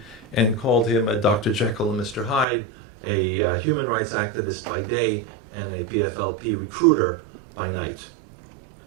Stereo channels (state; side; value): drops out; left; at 2.5 s